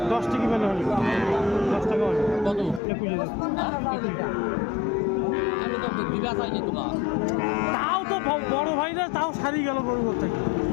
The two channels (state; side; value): drops out; right; at 2.8 s